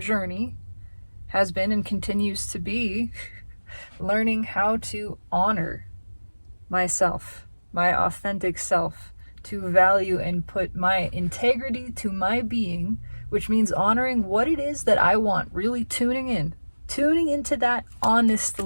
has been and continues to be learning how to honor myself, my authentic self, to value and put my integrity to my being, which means honoring what it is that I want, really tuning into that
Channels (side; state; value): both; inverted; correlation -1.00